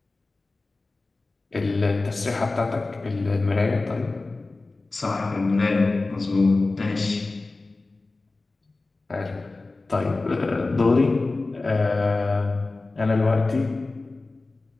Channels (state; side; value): quieter; right; 3.4 dB